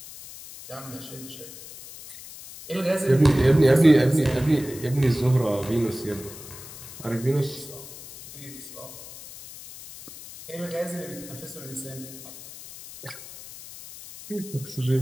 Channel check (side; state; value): left; noise; hiss, 15 dB below the sound